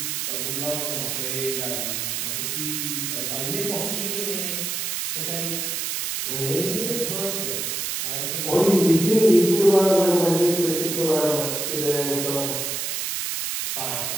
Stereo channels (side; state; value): right; noise; hiss, 2 dB below the sound